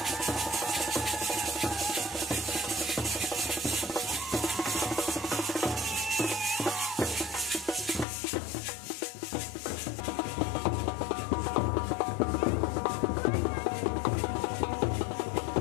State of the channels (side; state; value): right; drops out; at 8.1 s